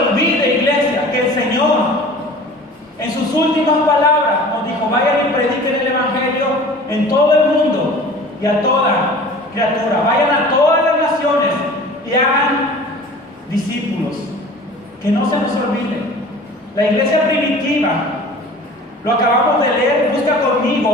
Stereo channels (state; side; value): normal; both; correlation 0.42